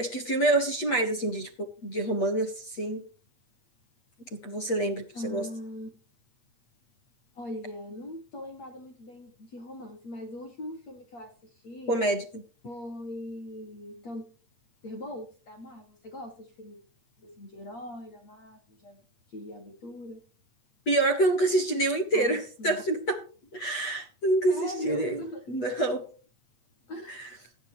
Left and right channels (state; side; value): late; right; 8.1 ms